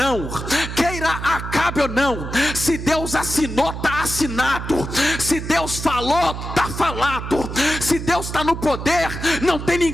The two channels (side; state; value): right; noise; hum, 7 dB below the sound